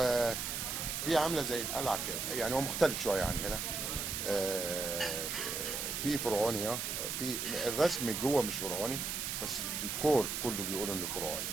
في عامله زي القلعه كده، يعني هو مختلف شويه عن هنا. في فرعوني، في الرسم جوه مش فرعوني بس الديكور كله بيقولوا انه فرعوني.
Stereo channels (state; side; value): noise; right; hiss, 2 dB below the sound